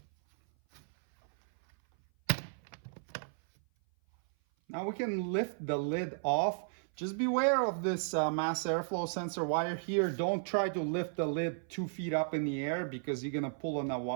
Now we can lift the lid off. Just beware of this mass airflow sensor wire here. Don't try to lift the lid 2 feet up in the air because you're gonna pull on a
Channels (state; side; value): silent; left; 55 dB below the other